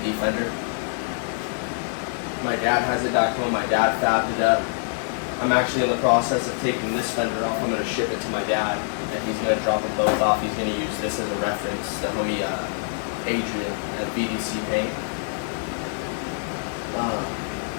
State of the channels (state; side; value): silent; right; digital silence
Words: fender. My dad has it back home. My dad fabbed it up. I'm actually in the process of taking this fender off. I'm going to ship it to my dad, and he's going to drop them both off. He's going to use this as a reference. The homie Adrian at BDC Paint.